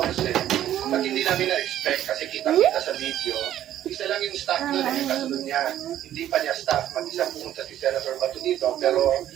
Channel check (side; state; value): left; quieter; 11.9 dB